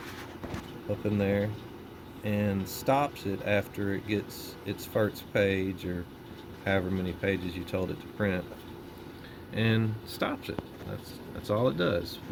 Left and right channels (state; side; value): identical; both; correlation 1.00